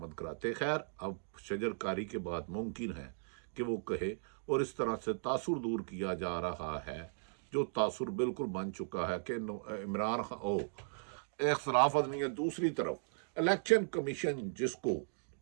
کراتے۔ خیر، اب شجر کاری کے بعد ممکن ہے کہ وہ کہے، اور اس طرح سے تاثر دور کیا جا رہا ہے، جو تاثر بالکل بن چکا ہے کہ عمران خان اختلاف نہیں ہے۔ دوسری طرف الیکشن کمیشن، جس کو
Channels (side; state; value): left; silent; digital silence